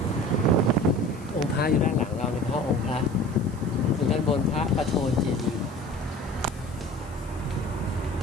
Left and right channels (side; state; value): left; noise; hiss, 25 dB below the sound